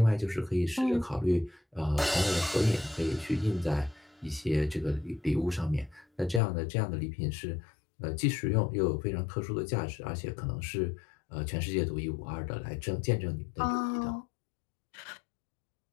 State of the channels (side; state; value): right; drops out; at 6.4 s